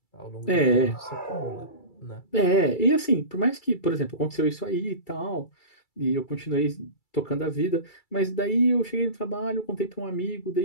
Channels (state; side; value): late; right; 2.3 ms